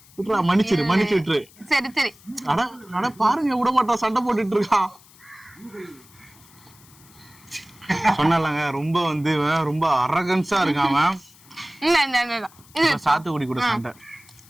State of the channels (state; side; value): noise; left; hiss, 26 dB below the sound